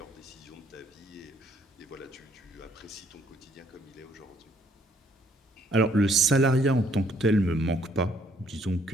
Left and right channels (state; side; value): normal; both; correlation 0.66